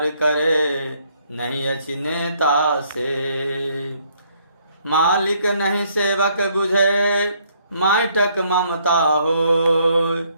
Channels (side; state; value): both; inverted; correlation -0.67